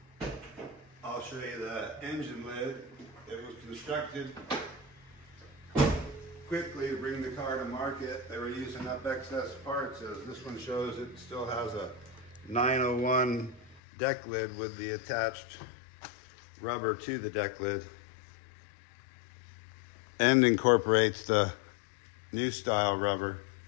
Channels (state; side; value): drops out; right; at 13.8 s